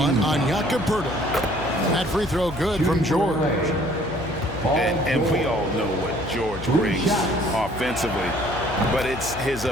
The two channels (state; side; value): noise; left; hum, 12 dB below the sound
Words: on Jakob Pirtle. That free throw good from George. And we all know what George brings offensively. But it's his